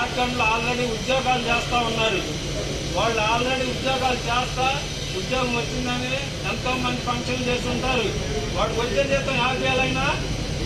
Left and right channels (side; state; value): both; identical; correlation 1.00